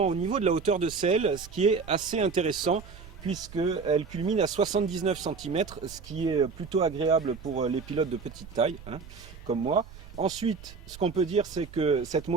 au niveau de la hauteur de selle, ce qui est assez intéressant puisqu'elle culmine à 79 cm, ce qui est plutôt agréable pour les pilotes de petite taille, comme moi. Ensuite, ce qu'on peut dire, c'est que cette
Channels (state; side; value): quieter; left; 4.9 dB